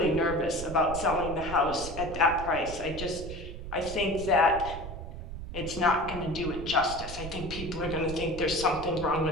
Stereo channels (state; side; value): noise; right; rumble, 9 dB below the sound